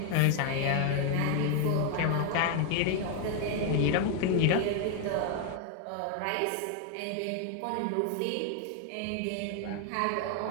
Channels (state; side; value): different; both; correlation 0.00